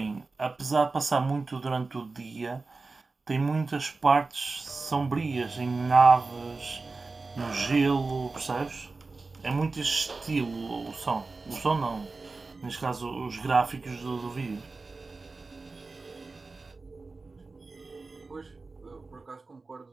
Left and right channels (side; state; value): left; quieter; 3.8 dB